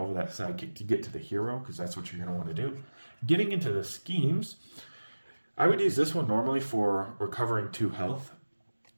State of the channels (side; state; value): both; inverted; correlation -1.00